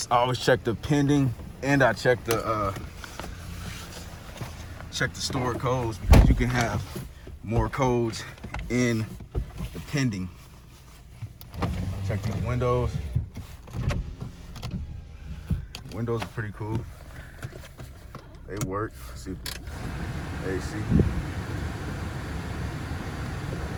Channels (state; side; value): identical; both; correlation 1.00